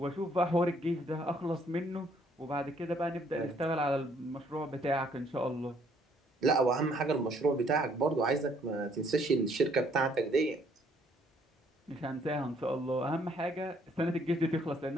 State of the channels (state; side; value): normal; both; correlation 0.65